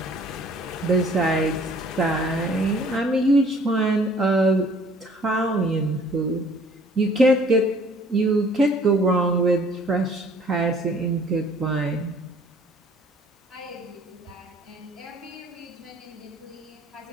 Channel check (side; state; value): both; normal; correlation 0.56